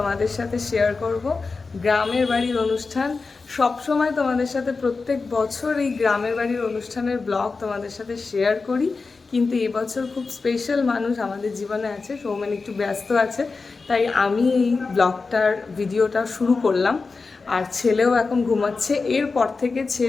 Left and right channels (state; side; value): quieter; right; 4.2 dB